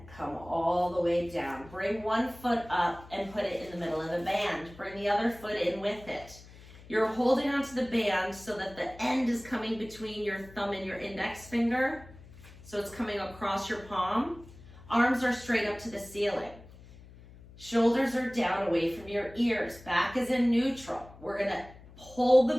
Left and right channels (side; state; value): left; noise; hum, 20 dB below the sound